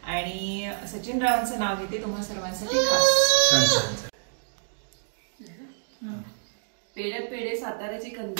आणि सचिन रावांचं नाव घेते तुम्हा सर्वांसाठी खास. पेड्यात पेढे साताऱ्याची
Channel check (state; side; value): silent; left; digital silence